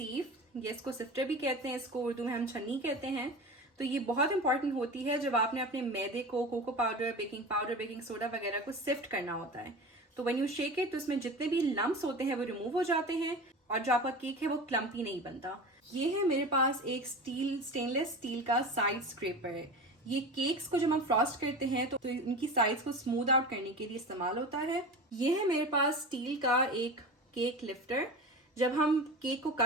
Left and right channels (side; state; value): both; normal; correlation 0.31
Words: ये इसको सिफ्टर भी कहते हैं, इसको उर्दू में हम छन्नी कहते हैं। तो ये बहुत इंपॉर्टेंट होती है जब आपने अपने मैदे को कोको पाउडर, बेकिंग सोडा वगैरह को सिफ्ट करना होता है। तो व्हेन यू शेक इट तो इसमें जितने भी लम्प्स होते हैं वो रिमूव हो जाते हैं और जो आपका केक है वो क्लम्पी नहीं बनता। ये है मेरे पास एक स्टेनलेस स्टील का साइड स्क्रैपर है। ये केक्स को जब हम फ्रॉस्ट करते हैं तो इनकी साइड्स को स्मूथ आउट करने के लिए इस्तेमाल होता है। ये है मेरे पास स्टील का एक केक लिफ्टर। जब हम केक को